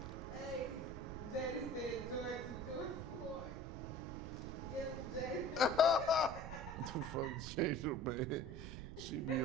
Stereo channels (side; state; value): right; noise; rumble, 8 dB below the sound